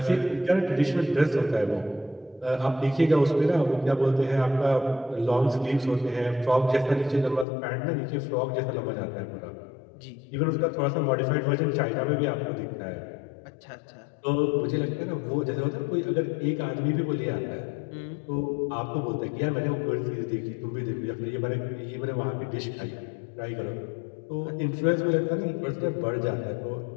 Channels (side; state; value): right; drops out; at 7.5 s